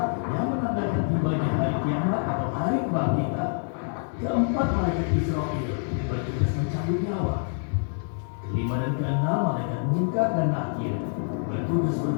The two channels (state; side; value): silent; right; digital silence